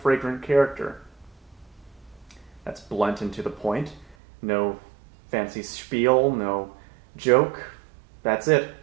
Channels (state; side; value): drops out; left; at 4.2 s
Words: fragrant character. That's blunt and to the point. No fancy spiel, no joke. That's it.